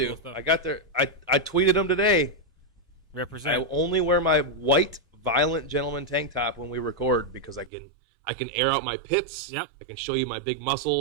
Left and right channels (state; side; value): drops out; left; at 7.7 s